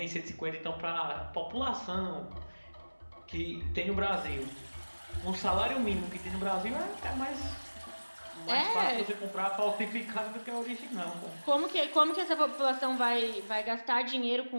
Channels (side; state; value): both; inverted; correlation -1.00